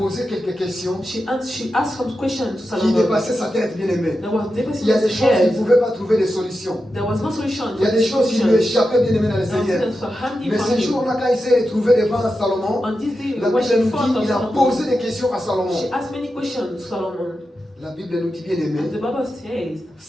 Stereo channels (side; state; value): both; normal; correlation 0.90